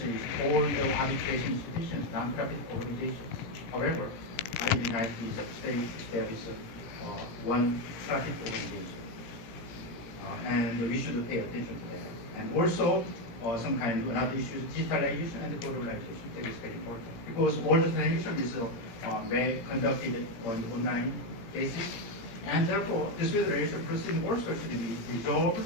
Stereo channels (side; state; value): right; late; 17 ms